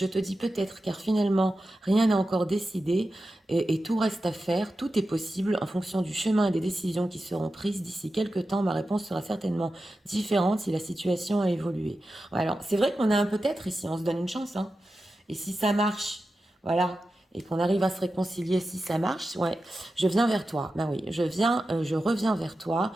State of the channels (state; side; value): normal; both; correlation 0.92